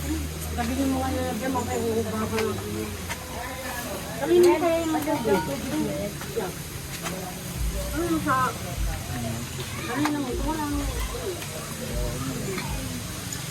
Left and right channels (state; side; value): identical; both; correlation 1.00